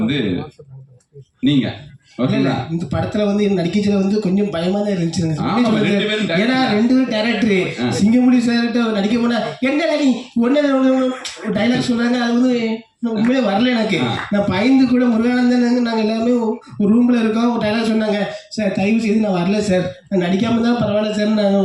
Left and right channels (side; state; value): both; identical; correlation 1.00